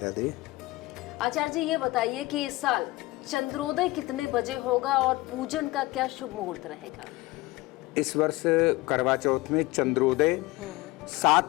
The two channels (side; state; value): right; quieter; 20.4 dB